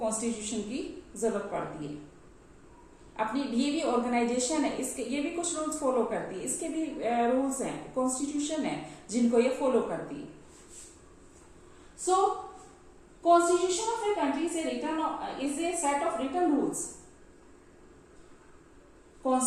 की जरूरत पड़ती है। अपनी ये भी ऑर्गेनाइजेशन है, इसके ये भी कुछ रूल्स फॉलो करती है, इसके भी रूल्स हैं, कॉन्स्टिट्यूशन है जिनको ये फॉलो करती है। So constitution of a country is a set of written rules.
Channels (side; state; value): both; identical; correlation 1.00